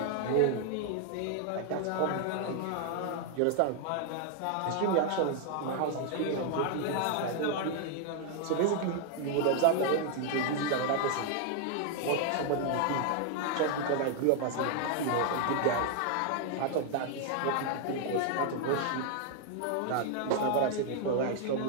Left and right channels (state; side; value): different; both; correlation 0.00